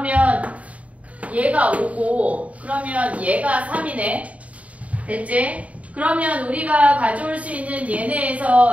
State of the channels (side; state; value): left; late; 0.067 ms